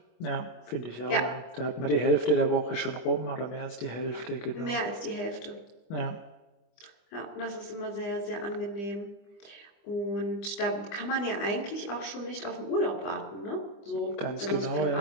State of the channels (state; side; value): late; right; 25 ms